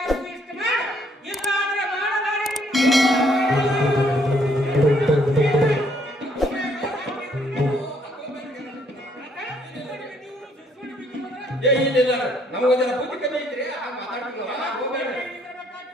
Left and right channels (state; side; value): normal; both; correlation 0.68